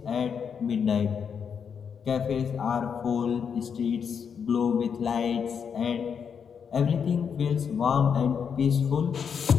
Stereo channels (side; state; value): right; quieter; 6.9 dB